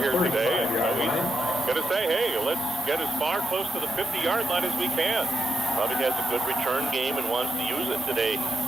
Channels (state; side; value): normal; both; correlation 0.85